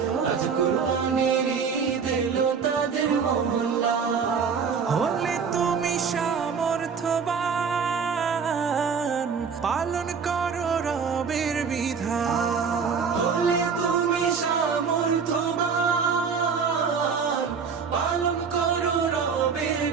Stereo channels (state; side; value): quieter; left; 6.0 dB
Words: আজ কুরবানির ঈদ এলো তাদের মহল্লায়। হলে তুমি সামর্থ্যবান, পালন করো রবের বিধান। হলে তুমি সামর্থ্যবান, পালন করো রবের